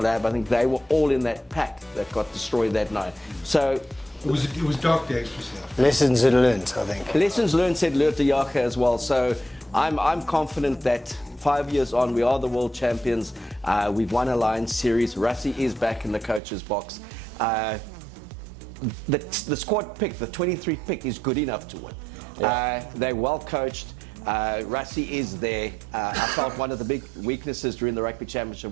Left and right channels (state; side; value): drops out; left; at 16.4 s